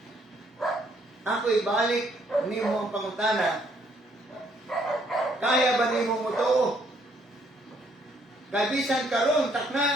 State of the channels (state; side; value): normal; both; correlation 0.68